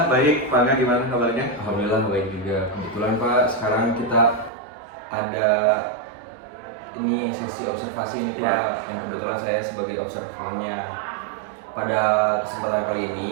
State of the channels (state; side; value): drops out; left; at 4.5 s